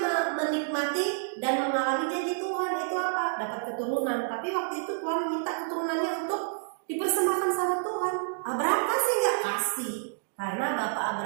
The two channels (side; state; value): left; silent; digital silence